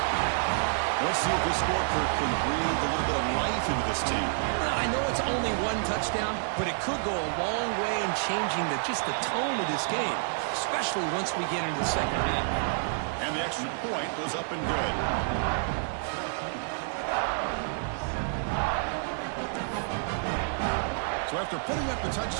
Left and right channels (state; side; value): silent; left; digital silence